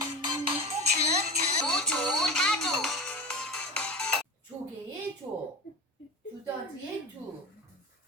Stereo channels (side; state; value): both; normal; correlation 0.29